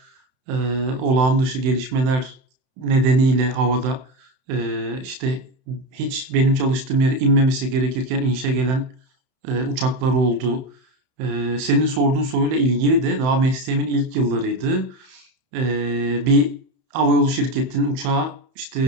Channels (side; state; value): left; late; 31 ms